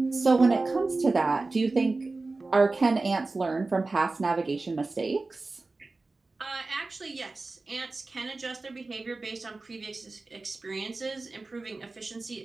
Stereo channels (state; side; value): quieter; left; 3.5 dB